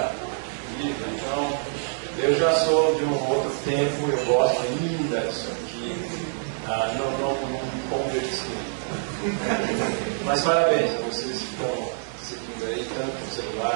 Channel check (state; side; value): silent; left; digital silence